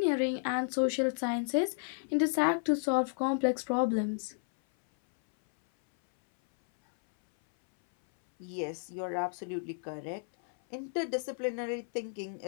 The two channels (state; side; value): silent; right; 56 dB below the other